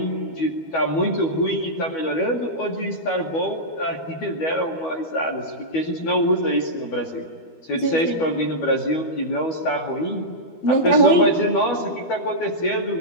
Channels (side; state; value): right; late; 12 ms